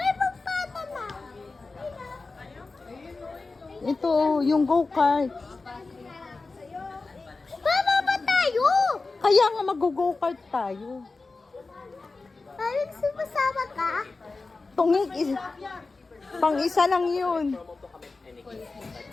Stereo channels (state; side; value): quieter; right; 3.8 dB